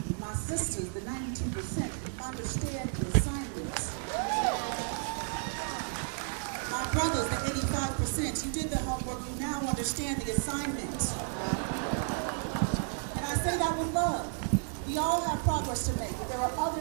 My sisters, the 92%, understand the assignment. My brothers, the 85%, you did the homework, you now understand the assignment. And I say that with love. We all have progress to make, but there are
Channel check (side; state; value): left; silent; 56 dB below the other